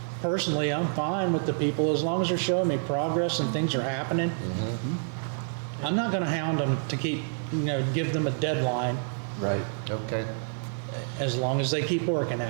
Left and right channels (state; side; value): silent; left; 59 dB below the other